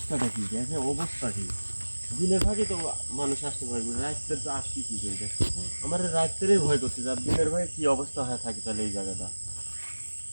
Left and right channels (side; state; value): both; inverted; correlation -1.00